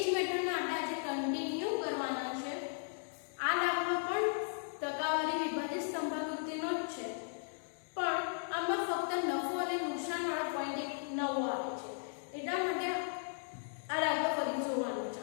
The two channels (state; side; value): silent; right; digital silence